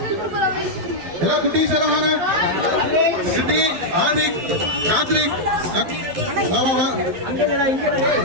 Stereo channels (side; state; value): left; late; 12 ms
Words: எல்லாம் குட்டீஸ் எல்லாம் வாங்க. சிட்டி, ஆதிக், கார்த்திக், வா வா வா.